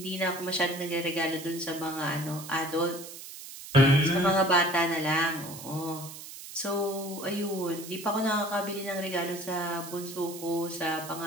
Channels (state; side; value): noise; right; hiss, 13 dB below the sound